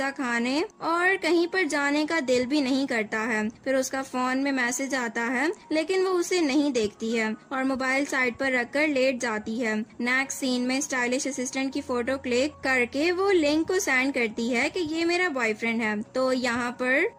खाने और कहीं पर जाने का दिल भी नहीं करता है। फिर उसका फोन में मैसेज आता है, लेकिन वो उसे नहीं देखती है और मोबाइल साइड पर रखकर लेट जाती है। नेक्स्ट सीन में स्टाइलिश असिस्टेंट की फोटो क्लिक करके वो लिंक को सेंड करती है कि ये मेरा बॉयफ्रेंड है। तो यहाँ पर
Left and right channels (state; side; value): identical; both; correlation 1.00